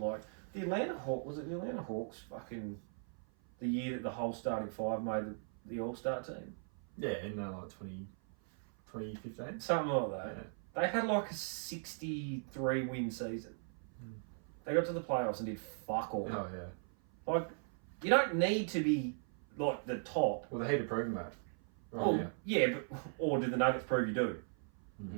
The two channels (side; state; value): left; silent; 52 dB below the other